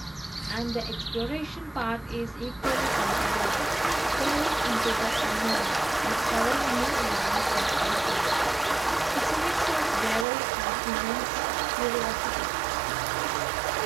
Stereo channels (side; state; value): left; drops out; at 10.2 s